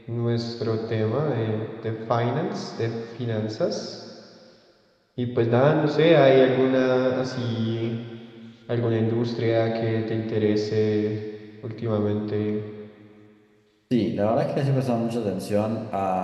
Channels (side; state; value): both; identical; correlation 1.00